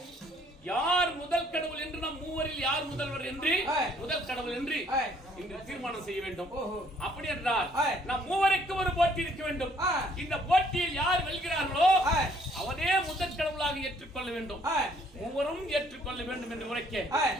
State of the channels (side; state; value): both; normal; correlation 0.64